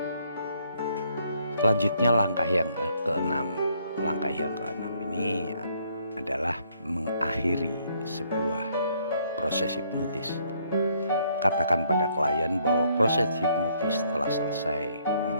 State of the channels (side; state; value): both; inverted; correlation -0.68